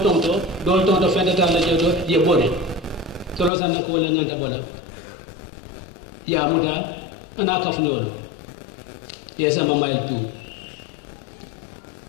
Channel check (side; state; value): right; drops out; at 3.5 s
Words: tonto fentata la jedo ye bone to lo sanna ko wala nyanta bola ya muta ana ka fnolo ye sama mail tu